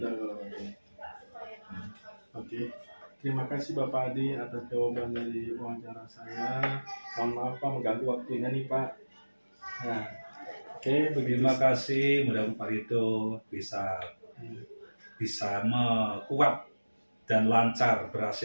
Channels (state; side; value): inverted; both; correlation -1.00